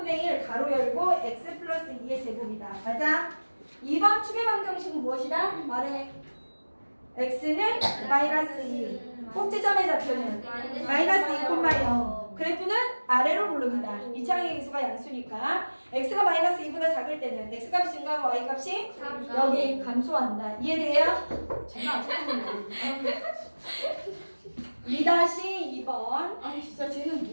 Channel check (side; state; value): both; inverted; correlation -1.00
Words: 1 가로 열고 x 플러스 2의 제곱이다. 맞아? 2번 축의 방정식은 무엇이다? 말해. x는 마이너스 2. 꼭지점의 좌표는 마이너스 2,0. 그래프는 아래로 블록이다. 이차항의 기수가 양수니까 x가 마이너스 2보다 작을 때는 x값이 증가하고 y값이 여기 감소한다. 이해돼요? 제가 아직도 2-2번. 아 진짜 쟤는